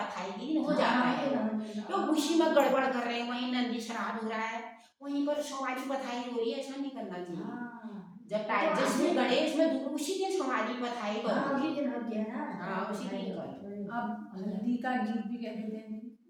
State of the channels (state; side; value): identical; both; correlation 1.00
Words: के दिन हो जाता है। तो उसी में गड़बड़ कर रहे हैं, वहीं नंदी श्राद्ध हो रहा है, वहीं पर सुवारी पथाई हो रही है, ऐसा नहीं करना चाहिए। जब टाइम जिसमें गणेश में दूर उसी दिन सुवारी पथाई करो, उसी दिन होती है ना। हाँ, उसी दिन करो। अब हल्दी का गीत भी कह देते हैं,